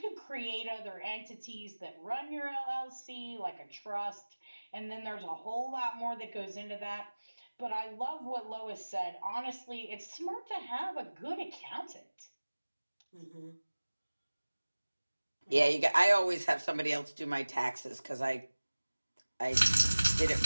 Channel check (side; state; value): both; inverted; correlation -1.00